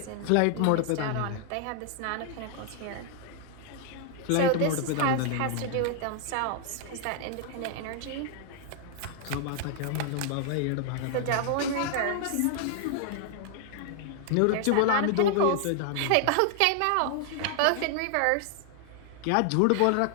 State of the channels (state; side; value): different; both; correlation 0.00